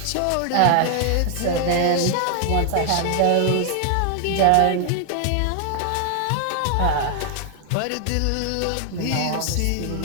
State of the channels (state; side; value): different; both; correlation 0.00